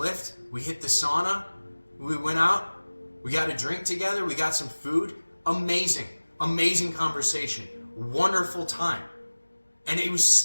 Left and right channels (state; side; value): inverted; both; correlation -1.00